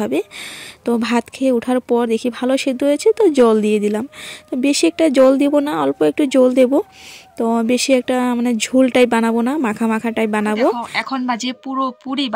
তো ভাত খেয়ে ওঠার পর দেখি ভালো সেদ্ধ হয়েছে, তো জল দিয়ে দিলাম। তো বেশি একটা জল দেবো না, অল্প একটু জল দেবো। তো বেশি একটা মানে ঝোল টাইপ বানাবো না, মাখা মাখা টাইপ বানাবো। এখন বাজে পুরি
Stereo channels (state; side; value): identical; both; correlation 1.00